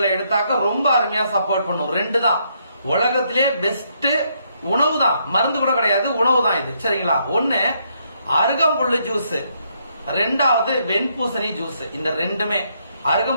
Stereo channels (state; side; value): inverted; both; correlation -0.74